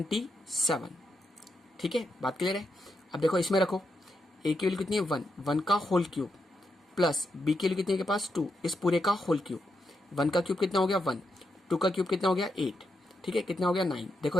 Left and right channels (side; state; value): both; normal; correlation 0.83